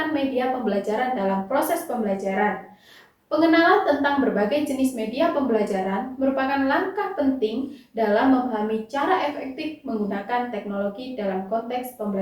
media pembelajaran dalam proses pembelajaran. Pengenalan tentang berbagai jenis media pembelajaran merupakan langkah penting dalam memahami cara efektif menggunakan teknologi dalam konteks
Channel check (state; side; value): identical; both; correlation 1.00